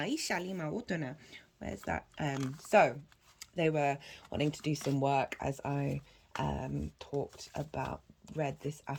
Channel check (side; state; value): both; identical; correlation 1.00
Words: that? So they were wanting to do some work as I read this